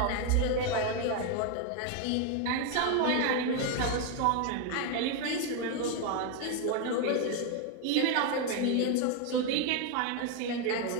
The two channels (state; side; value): different; both; correlation 0.01